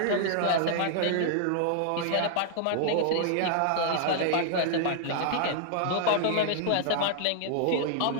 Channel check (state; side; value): different; both; correlation -0.01